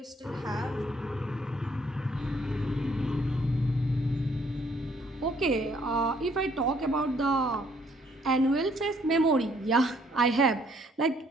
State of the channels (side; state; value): both; normal; correlation 0.65